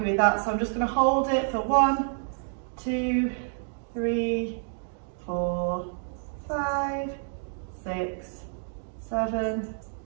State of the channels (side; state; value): left; silent; digital silence